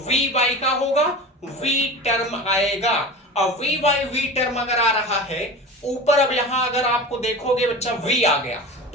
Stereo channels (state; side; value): normal; both; correlation 0.32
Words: v बाई का होगा, v टर्म आएगा। और v बाई v टर्म अगर आ रहा है ऊपर, अब यहां अगर आपको देखोगे बच्चा v आ गया